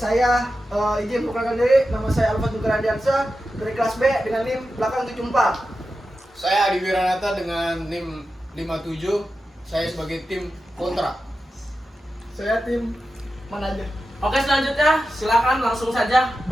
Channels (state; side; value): normal; both; correlation 0.91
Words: izin memperkenalkan diri. Nama saya Alfa Dukaradiansa dari kelas B dengan NIM belakang 74. Saya Adi Wiranata dengan NIM 57. Saya sebagai tim kontra. Saya tim manajer. Oke, selanjutnya silakan langsung saja